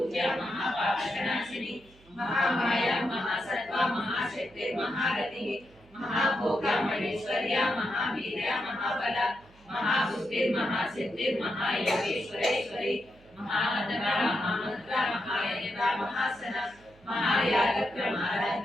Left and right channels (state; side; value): noise; right; hum, 27 dB below the sound